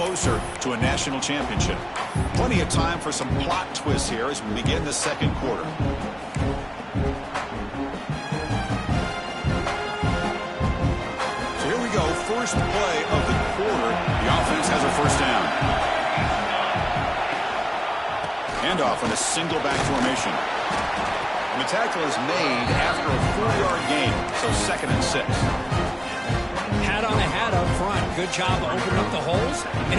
to a national championship. Plenty of time for some plot twists here as we begin the second quarter. First play of the quarter, the offense has a first down. Handoff on a single back formation. And the tackle is made after a 4-yard gain, so 2nd and 6. Hat on a hat up front. Good job of opening up the holes.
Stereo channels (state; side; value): identical; both; correlation 1.00